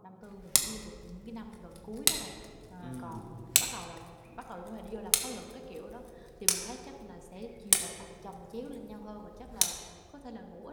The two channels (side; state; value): both; identical; correlation 1.00